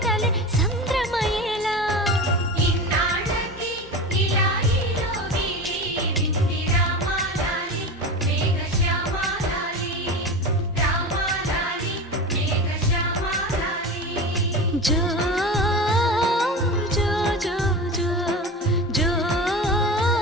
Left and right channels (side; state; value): both; normal; correlation 0.28